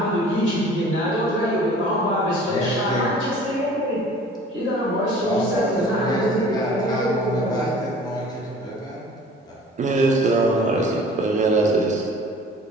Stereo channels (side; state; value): both; normal; correlation 0.47